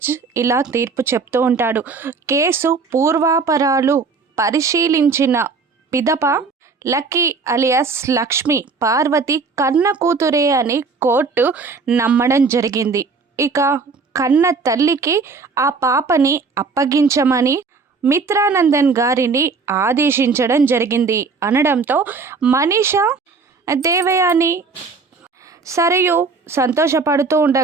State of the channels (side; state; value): left; quieter; 4.6 dB